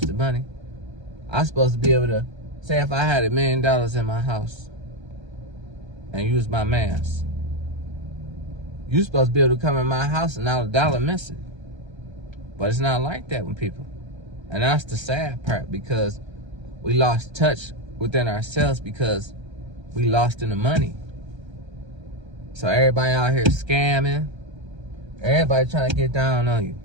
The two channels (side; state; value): left; late; 1.3 ms